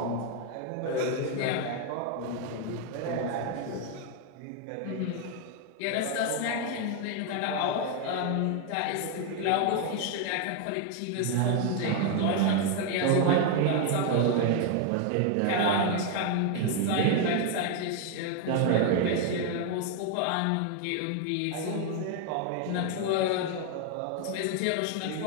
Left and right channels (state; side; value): different; both; correlation 0.00